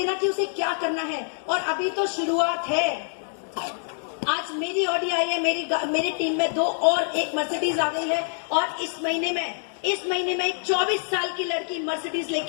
कि उसे क्या करना है, और अभी तो शुरुआत है। आज मेरी ऑडी आई है, मेरी टीम में 2 और एक मर्सिडीज आ गई है, और इस महीने में एक 24 साल की लड़की मर्सिडीज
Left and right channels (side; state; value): right; silent; digital silence